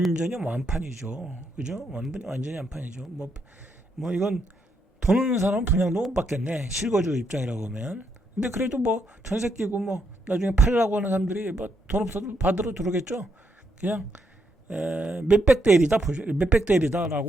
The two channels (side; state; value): both; normal; correlation 0.77